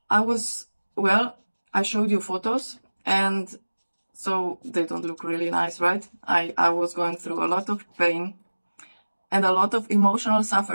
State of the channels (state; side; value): inverted; both; correlation -1.00